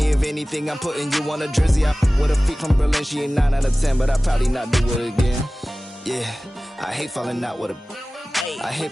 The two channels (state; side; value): normal; both; correlation 0.97